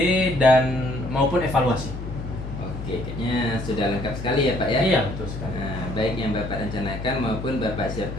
dan maupun evaluasi. Oke, kayaknya sudah lengkap sekali ya Pak ya? Iya, betul sekali. Nah, baik yang Bapak rencanakan maupun Bapak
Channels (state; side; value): noise; left; hum, 8 dB below the sound